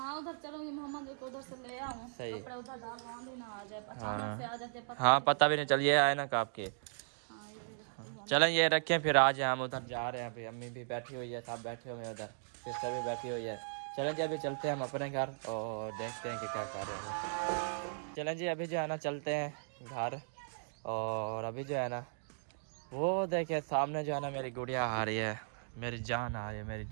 उधर चलूंगी, मोहम्मद को उधर से ले आऊँ, सही। कपड़े उधर डाल आंधी ना आ जाए, अचानक से आ जाते पता हाँ नहीं पता भी नहीं चलिए आए ना आपके। हाँ ये भी रखती हूँ। चलें ये रखें, फिर आज हम उधर जा रहे हैं, अभी अम्मी भी बैठी हुई है, सब बैठे हुए हैं उधर, सिस्टर भी बैठी हुई है। चलें जी अभी चलते हैं हम अपने घर और देखते हैं कि क्या कर रहे हैं। चलें जी अभी जो है ना चलते हैं घर, और अभी जो है ना वो देखिए सामने जो है ना मेरी गुड़िया आ रही है, मेरी जान आ रही है, मेरी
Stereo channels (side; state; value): left; silent; digital silence